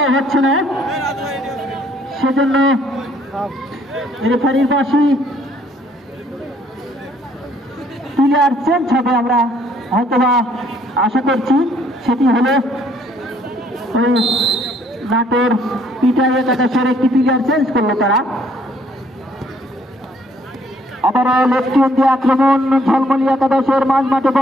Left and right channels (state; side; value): normal; both; correlation 0.64